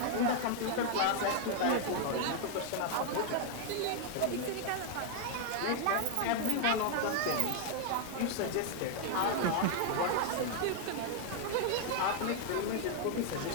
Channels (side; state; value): both; different; correlation 0.00